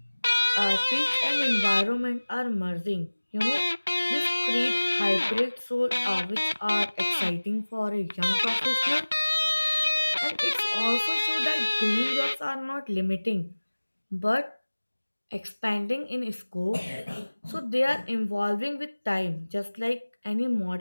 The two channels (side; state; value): both; inverted; correlation -1.00